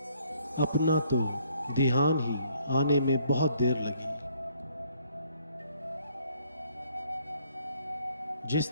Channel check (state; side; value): inverted; both; correlation -0.66